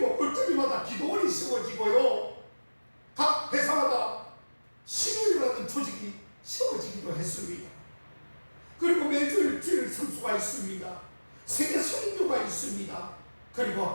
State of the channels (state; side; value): inverted; both; correlation -1.00